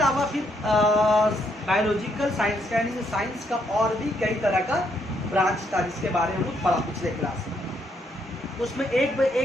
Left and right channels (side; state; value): both; normal; correlation 0.74